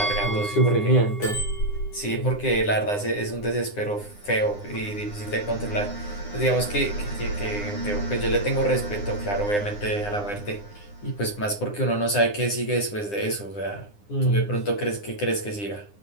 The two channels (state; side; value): late; right; 9.8 ms